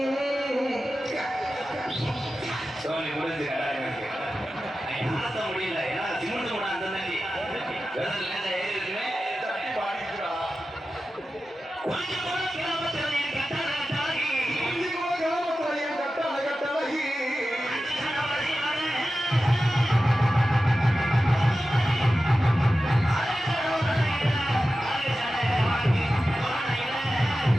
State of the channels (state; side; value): normal; both; correlation 0.93